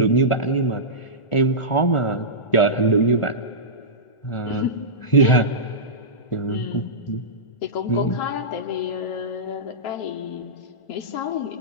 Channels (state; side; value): late; right; 1.4 ms